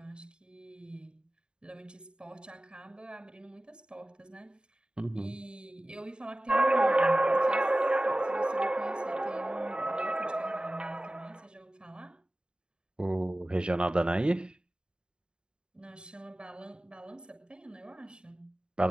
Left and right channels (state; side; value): late; left; 0.050 ms